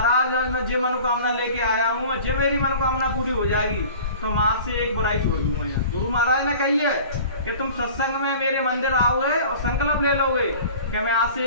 आज मैं जो मनोकामना लेके आया हूँ, जो मेरी मनोकामना पूरी हो जाएगी तो मैं आज से एक बुराई छोड़ दूंगा। यहाँ गुरु महाराज ने कही है कि तुम सत्संग में मेरे मंदिर आओगे और संकल्प ले लोगे कि मैं आज से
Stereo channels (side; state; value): both; inverted; correlation -0.43